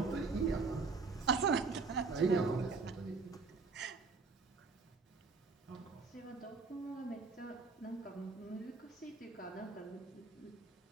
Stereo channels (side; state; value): left; quieter; 4.4 dB